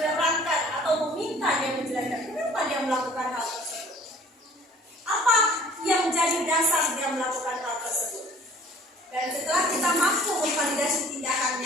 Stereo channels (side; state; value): both; normal; correlation 0.52